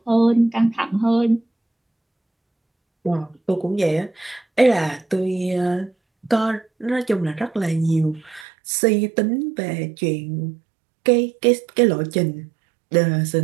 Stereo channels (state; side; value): drops out; left; at 8.5 s